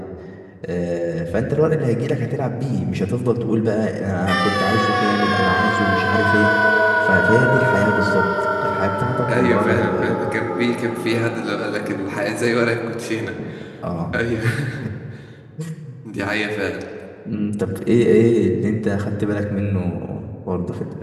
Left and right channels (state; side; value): identical; both; correlation 1.00